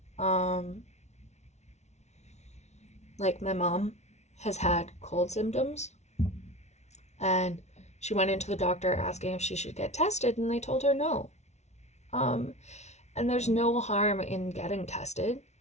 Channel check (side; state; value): right; late; 0.32 ms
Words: Like my mom has had cold symptoms, and she went into the doctor asking if she should get tested, and they told her no. And there's no harm in getting tested,